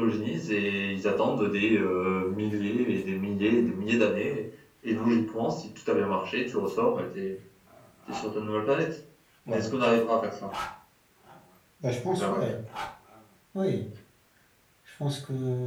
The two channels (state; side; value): identical; both; correlation 1.00